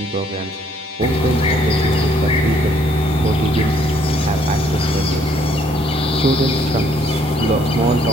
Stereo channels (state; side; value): normal; both; correlation 0.66